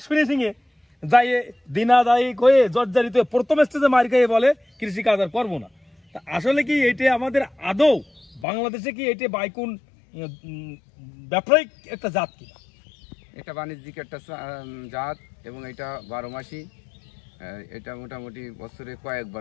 ফিনিশিংয়ে যাই দিনাদায়ী হয়ে জর্জারিত প্রথম স্টেজে মার খেয়ে বলে কৃষিকাজ আর করবো না। তা আসলে কি এটা আমাদের আদৌ বাংলাদেশে কি এটা বাইকুন ব্যবসায়িক একটা জাত কিনা? এটা বাণিজ্যিক একটা জাত এবং এটা 12 মাসই। এটা মোটামুটি বছরে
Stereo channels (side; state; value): right; drops out; at 8.5 s